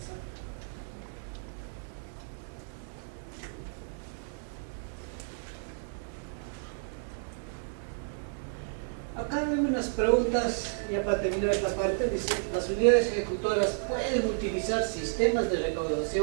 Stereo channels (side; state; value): left; silent; 57 dB below the other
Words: Acá hay unas preguntas, ya para terminar esta parte, dice, las unidades ejecutoras pueden utilizar sistemas de